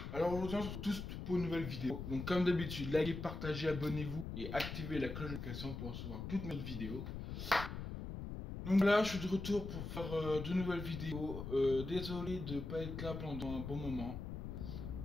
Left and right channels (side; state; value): left; noise; rumble, 6 dB below the sound